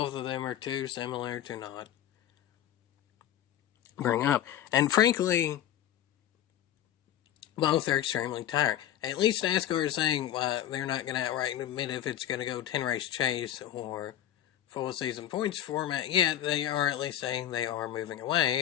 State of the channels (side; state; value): right; quieter; 11.4 dB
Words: of them are too similar to not bring up. And frankly, both are extremely tiring. At least NASCAR is saying they're not going to outright admit if it's going to go 10-race chase or full season points format. Yet they are at least saying they are moving